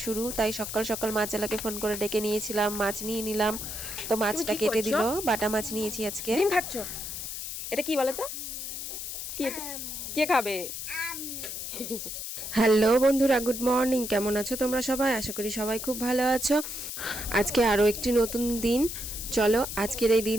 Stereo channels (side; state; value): left; noise; hiss, 6 dB below the sound